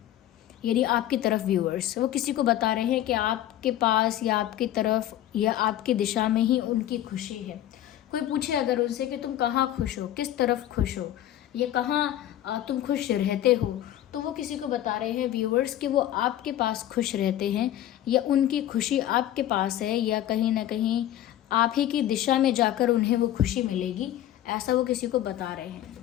यानी आपकी तरफ। व्यूअर्स वो किसी को बता रहे हैं कि आपके पास या आपकी तरफ या आपकी दिशा में ही उनकी खुशी है। कोई पूछे अगर उनसे कि तुम कहाँ खुश हो, किस तरफ खुश हो, या कहाँ तुम खुश रहते हो, तो वो किसी को बता रहे हैं व्यूअर्स कि वो आपके पास खुश रहते हैं, या उनकी खुशी आपके पास है, या कहीं ना कहीं आप ही की दिशा में जाकर उन्हें वो खुशी मिलेगी, ऐसा वो किसी को बता रहे हैं।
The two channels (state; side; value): quieter; right; 12.6 dB